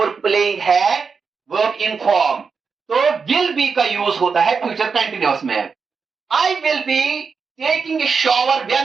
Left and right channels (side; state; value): left; quieter; 5.4 dB